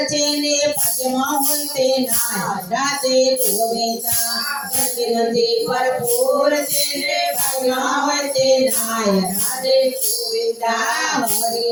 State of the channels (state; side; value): identical; both; correlation 1.00